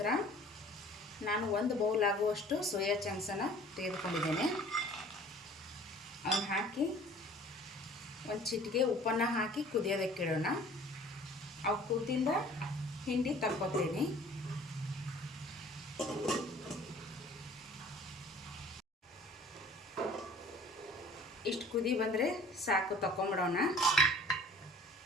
ನಾನು 1 ಬೌಲ್ ಆಗುವಷ್ಟು ಸೋಯಾ ಚಂಕ್ಸನ್ನು ತೆಗೆದುಕೊಂಡಿದ್ದೇನೆ. ಅವನ್ನ ಹಾಕಿ ಒಂದು ಚಿಟಿಕೆ ಉಪ್ಪನ್ನು ಹಾಕಿ ಕುದಿಯೋದಕ್ಕಿಡೋಣ. ಅವು ಕುದ್ದಿಂದ ಹಿಂಡಿ ತಕ್ಕೊತೀನಿ. ಇಷ್ಟು ಕುದಿ ಬಂದರೆ ಸಾಕು, ತಕ್ಕೊಂಬಿಡೋಣ.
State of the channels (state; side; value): normal; both; correlation 0.49